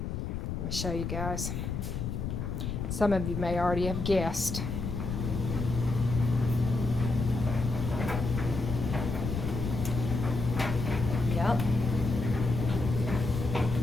Let me show you guys. Some of you may already have guessed. Yep.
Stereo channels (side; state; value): left; noise; rumble, 3 dB below the sound